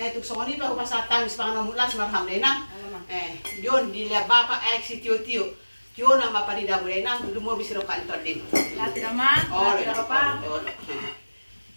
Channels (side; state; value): both; inverted; correlation -1.00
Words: tuksongoni pa upasatang ispang namulas marham denang yon dilihat bapak si tio na maparida mo renang lumor bisiro kan todim Lati naman, oh lati na pa.